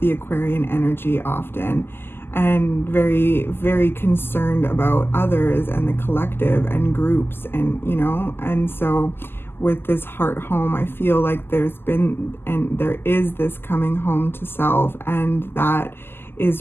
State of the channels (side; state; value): right; late; 0.11 ms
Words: Aquarian energy often, and very, very concerned about others and the collective and groups, and, you know, and so with this heart home, I feel like there's been and there is this coming home to self, and that